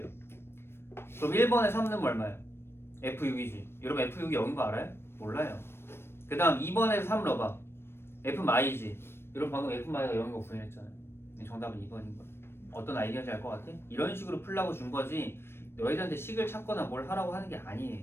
그럼 1번에 3 넣으면 얼마예요? f6이지. 여러분 f6이 0인 거 알아요? 몰라요. 그 다음 2번에서 3 넣어봐. f마이지. 여러분 방금 f마이가 0인 거 구현했잖아요. 정답은 2번인 거야. 어떤 아이디어인지 알 것 같아? 이런 식으로 풀라고 준 거지 너희들한테 식을 찾거나 뭘 하라고 하는 게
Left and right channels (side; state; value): right; late; 0.12 ms